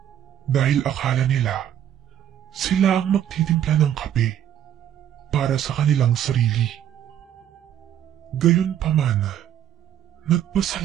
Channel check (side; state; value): left; quieter; 10.4 dB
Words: dahil akala nila sila ang magtitimpla ng kape para sa kanilang sarili. Gayunpaman,